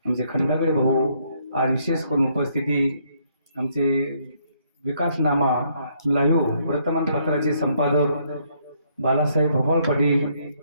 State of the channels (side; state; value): both; inverted; correlation -0.70